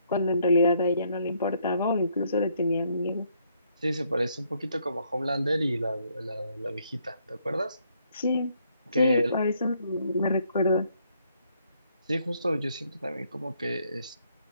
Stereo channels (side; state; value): both; inverted; correlation -0.71